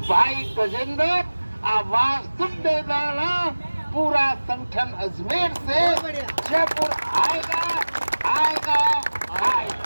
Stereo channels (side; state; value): both; inverted; correlation -1.00